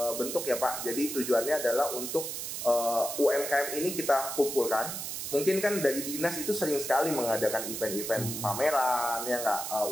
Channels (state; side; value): noise; right; hiss, 5 dB below the sound